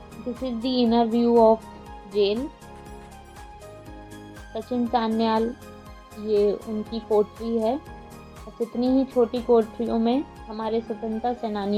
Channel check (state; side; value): identical; both; correlation 1.00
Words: This is the inner view of jail. Sachin Sanyal, ये उनकी कोठरी है। बस इतनी ही छोटी कोठरियों में हमारे स्वतंत्रता